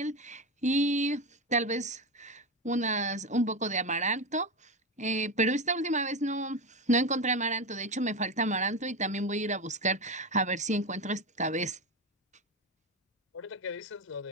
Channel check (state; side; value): normal; both; correlation 0.17